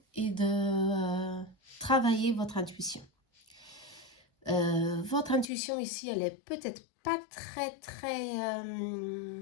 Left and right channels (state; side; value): drops out; right; at 5.5 s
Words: et de travailler votre intuition. Votre intuition ici, elle est peut-être pas très